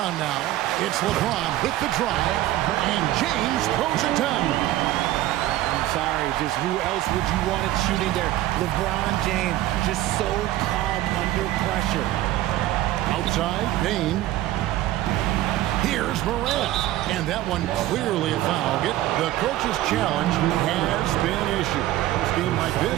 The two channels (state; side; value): quieter; left; 14.9 dB